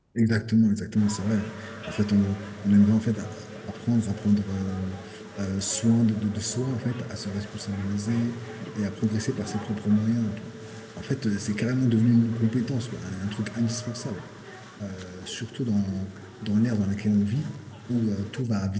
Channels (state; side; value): identical; both; correlation 1.00